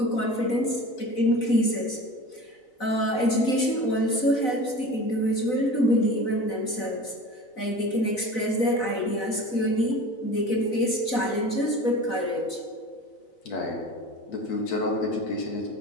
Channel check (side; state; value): right; late; 4.0 ms